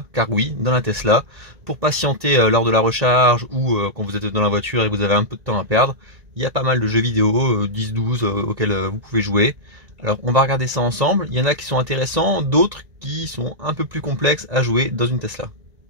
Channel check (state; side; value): late; left; 1.9 ms